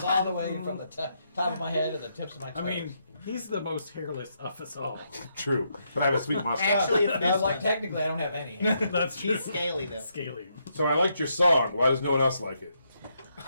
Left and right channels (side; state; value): both; inverted; correlation -0.78